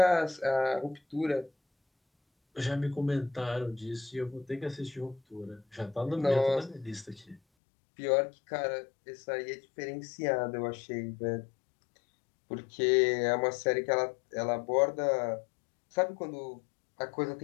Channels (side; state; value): right; drops out; at 7.4 s